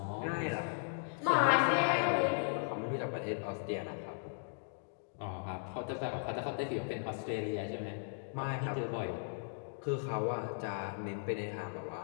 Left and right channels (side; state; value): right; silent; digital silence